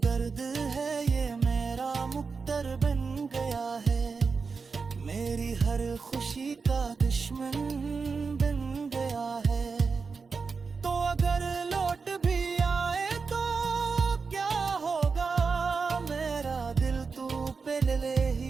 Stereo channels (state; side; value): quieter; left; 4.9 dB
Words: है ये मेरा मुक्तर बन गया है, मेरी हर खुशी का दुश्मन बन गया है। तो अगर लौट भी आए तो क्या होगा, मेरा दिल तू पहले